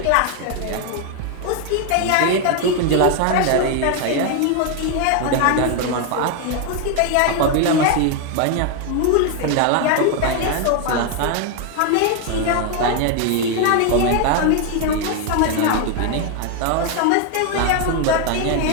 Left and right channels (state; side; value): different; both; correlation 0.01